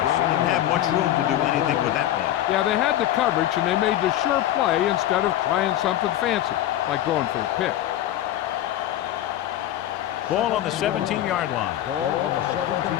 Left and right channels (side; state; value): right; quieter; 12.8 dB